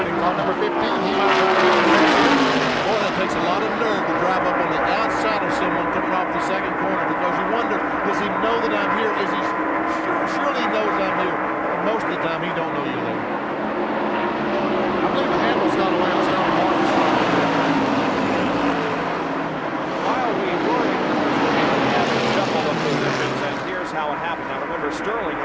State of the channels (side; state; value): both; identical; correlation 1.00